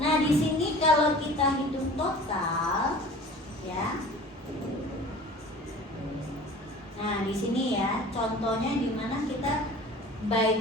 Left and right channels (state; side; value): normal; both; correlation 0.43